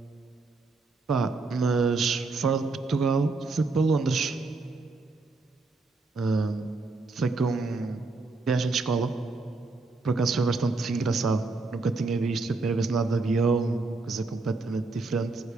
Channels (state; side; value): quieter; left; 3.6 dB